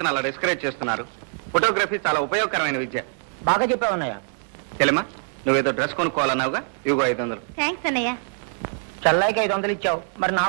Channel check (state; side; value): silent; left; 60 dB below the other